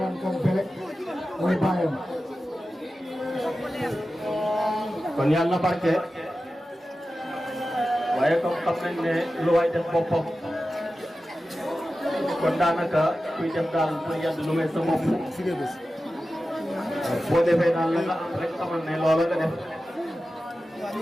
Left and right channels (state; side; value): normal; both; correlation 0.94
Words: Kane Bélé mooy bàyyam kon yàlla na barke waaye comme xam nañ ne lu waay def boppam kon daanaka kuy def daal pour yàdd lu may sa bopp boo defee daal la nga am rek xamal ne loola nga def